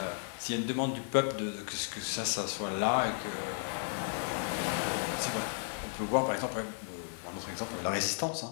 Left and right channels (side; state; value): right; silent; digital silence